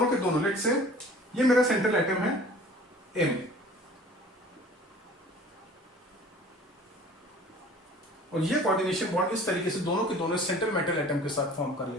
के दोनों, लेट से ये मेरा सेंट्रल एटम है M, और ये कोऑर्डिनेशन बॉन्ड इस तरीके से दोनों के दोनों सेंट्रल मेटल एटम के साथ फॉर्म कर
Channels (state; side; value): normal; both; correlation 0.47